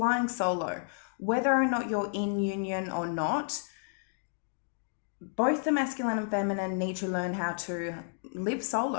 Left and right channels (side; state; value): right; silent; 57 dB below the other